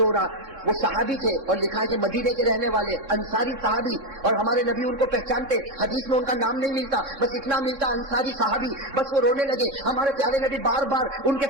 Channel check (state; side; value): late; left; 3.6 ms